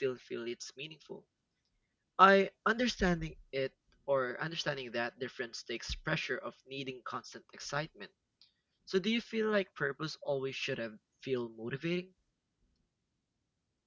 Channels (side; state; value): both; identical; correlation 1.00